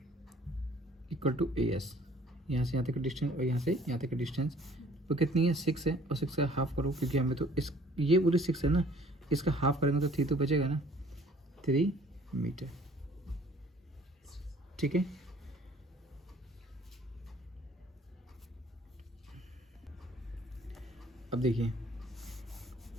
equal to A S, यहाँ से यहाँ तक का डिस्टेंस और यहाँ से यहाँ तक का डिस्टेंस वो कितनी है 6 है, और 6 का हाफ करो क्योंकि हमें तो इस ये पूरी 6 है ना, इसका हाफ करेंगे तो 3 तो बचेगा ना, 3 मीटर, ठीक है। अब देखिए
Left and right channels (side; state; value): both; normal; correlation 0.55